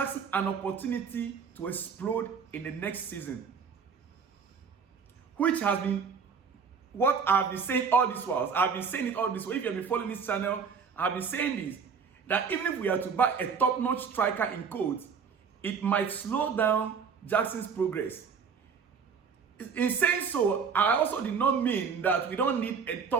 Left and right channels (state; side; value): quieter; left; 6.1 dB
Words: an opportunity to explode in the next season, which has been what I've been saying all this while. I've been saying it all this way. If you have been following this channel, I've been saying this, that even if we are to buy a top-notch striker in quotes, it might slow down Jackson's progress. In saying so, I also did not mean that we don't need a